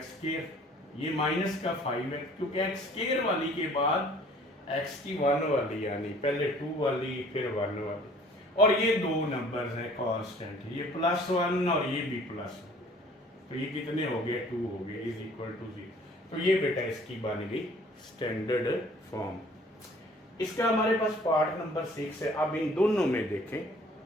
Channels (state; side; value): normal; both; correlation 0.53